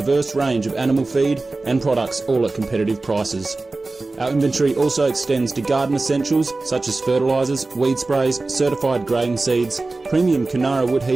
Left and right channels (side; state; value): left; quieter; 3.4 dB